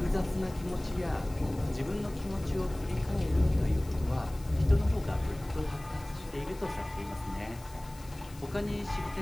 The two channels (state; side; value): noise; left; hiss, 21 dB below the sound